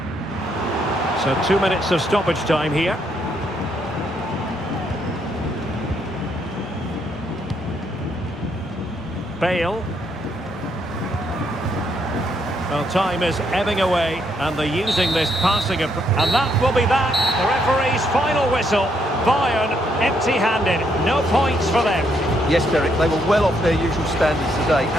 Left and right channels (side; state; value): both; normal; correlation 0.74